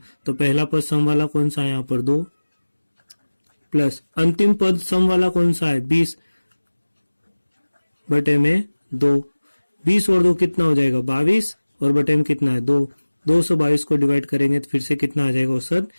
तो पहला पद सम वाला कौन सा है यहाँ पर? 2 प्लस अंतिम पद सम वाला कौन सा है? 20 बटे में 2। 20 और 2 कितना हो जाएगा? 22 और बटे में कितना है? 2। 2 से 22 को डिवाइड करेंगे तो फिर से कितना आ जाएगा? औसत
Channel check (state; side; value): inverted; both; correlation -1.00